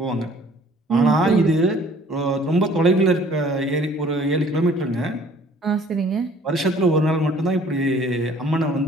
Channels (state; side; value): normal; both; correlation 0.54